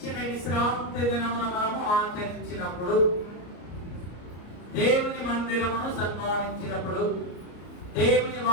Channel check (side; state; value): right; late; 34 ms